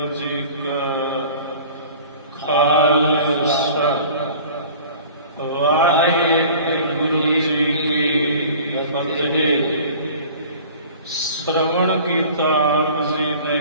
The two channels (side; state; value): both; inverted; correlation -0.44